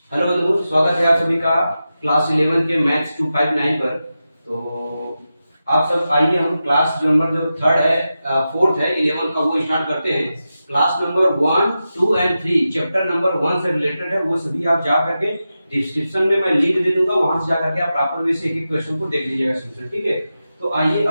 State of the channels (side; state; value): both; inverted; correlation -0.91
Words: बंधु, स्वागत है आप सभी का क्लास 11 के मैथ्स 259 पर। तो आप सब आइए, हम क्लास नंबर जो थर्ड है, फोर्थ है 11 का, वो स्टार्ट करते हैं। Class number 1, 2 and 3 chapter number 1 से रिलेटेड है, वो सभी आप जा करके डिस्क्रिप्शन में मैं लिंक दे दूंगा, वहां से जा करके आप प्रॉपर वे से एक एक क्वेश्चन को देख लीजिएगा सॉल्यूशन, ठीक है। तो आइए